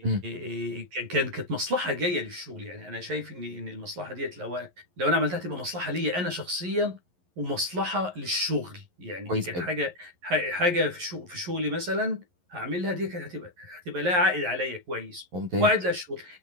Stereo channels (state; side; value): late; left; 11 ms